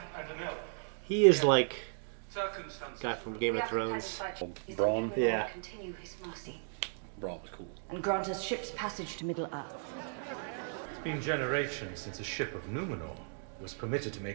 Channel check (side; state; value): left; silent; digital silence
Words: and an elf. He is like Circumstances. guy from Game of Thrones. Braun. Yeah. Braun was cool. And grant us ship's passage to Middle-earth. It's been generations since a ship of Numenor was permitted to